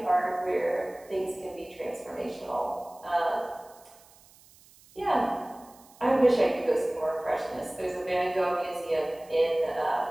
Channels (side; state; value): right; noise; hiss, 26 dB below the sound